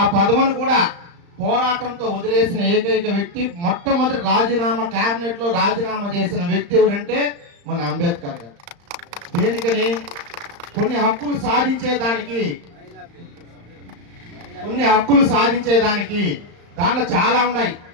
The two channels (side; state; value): left; late; 35 ms